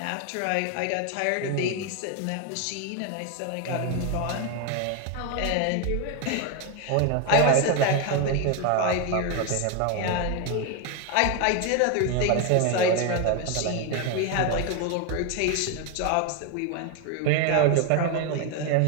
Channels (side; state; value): both; different; correlation 0.01